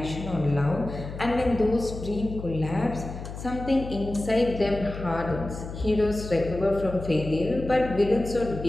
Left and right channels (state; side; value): noise; left; hum, 9 dB below the sound